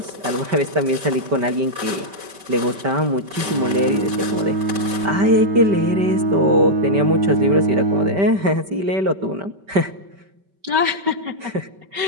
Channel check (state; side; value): late; left; 5.2 ms